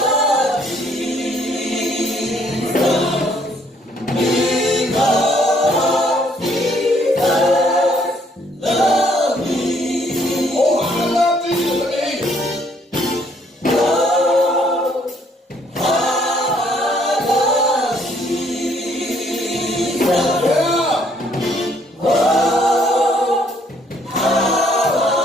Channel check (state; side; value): normal; both; correlation 0.66